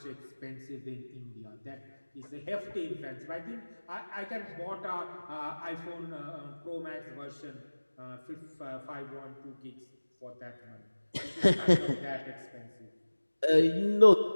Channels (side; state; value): both; inverted; correlation -1.00